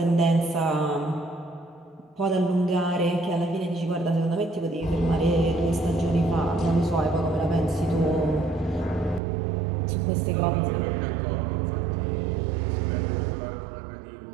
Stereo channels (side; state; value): left; drops out; at 9.2 s